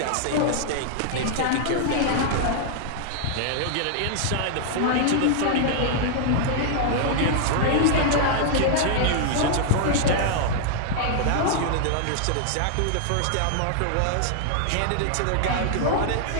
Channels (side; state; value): both; different; correlation -0.01